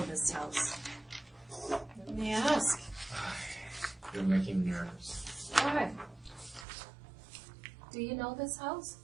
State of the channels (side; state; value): left; drops out; at 6.7 s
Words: this house. Let me ask. You're making me nervous. Why? Do you know this house?